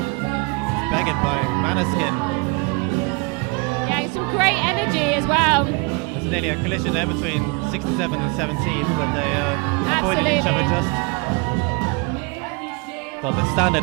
It's begged by Maneskin. Yeah, some great energy as well. There's nearly a collision there between 67 and 17, but they avoided each other Absolutely. just. God, the standard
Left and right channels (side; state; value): left; quieter; 30.6 dB